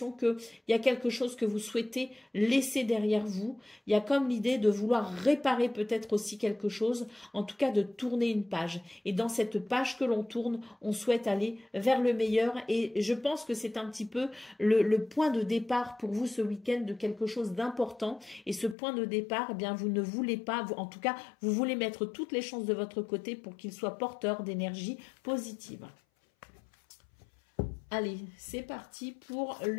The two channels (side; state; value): right; drops out; at 18.8 s